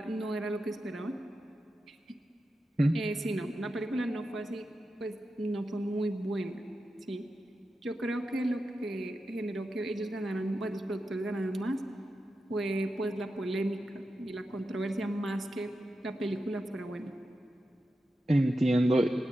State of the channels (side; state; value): both; normal; correlation 0.90